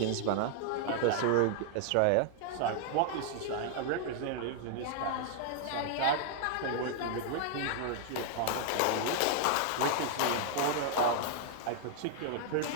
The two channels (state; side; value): different; both; correlation -0.01